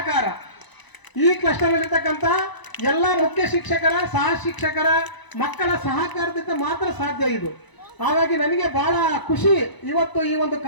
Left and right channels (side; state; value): right; late; 1.0 ms